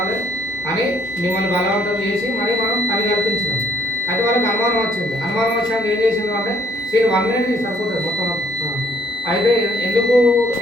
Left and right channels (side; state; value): both; normal; correlation 0.64